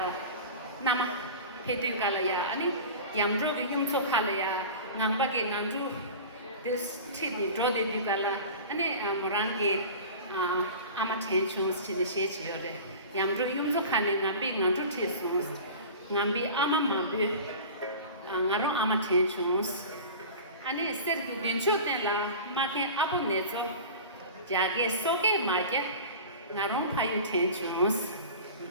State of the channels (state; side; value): inverted; both; correlation -0.35